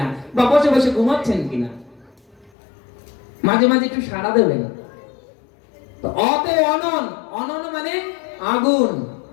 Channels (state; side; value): drops out; right; at 2.5 s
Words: বা বসে বসে ঘুমাচ্ছেন কিনা। মাঝে মাঝে একটু সাড়া দেবেন। তো অতে অনন, অনন মানে আগুন।